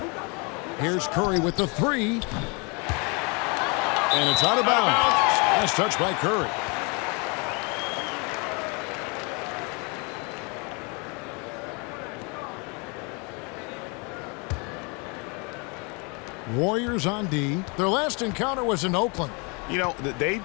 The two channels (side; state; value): right; quieter; 31.6 dB